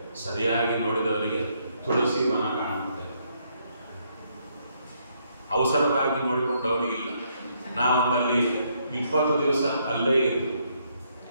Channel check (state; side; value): inverted; both; correlation -0.73